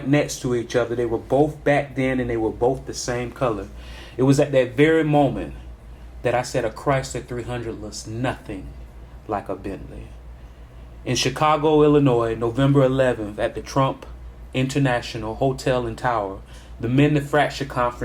next to each other, they were both back then and they were both the same color. It was at that very moment that I said a Chrysler 300 looks nothing like a Bentley. In Chicago, Illinois, November 11th at the Trump International Hotel and Tower, the Manufacturer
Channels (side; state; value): both; identical; correlation 1.00